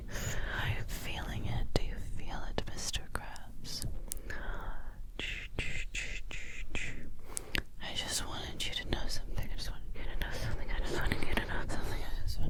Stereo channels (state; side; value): identical; both; correlation 1.00